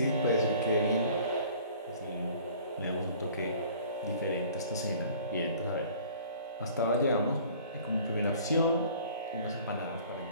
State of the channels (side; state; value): both; inverted; correlation -0.50